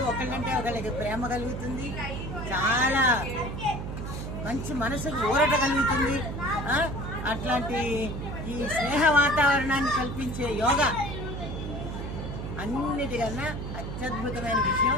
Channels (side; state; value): right; noise; hum, 6 dB below the sound